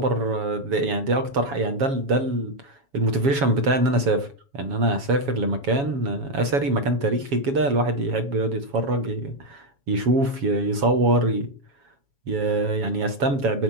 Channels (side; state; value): left; late; 7.2 ms